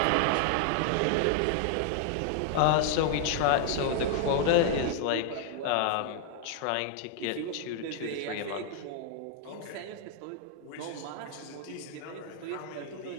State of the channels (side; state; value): both; different; correlation 0.00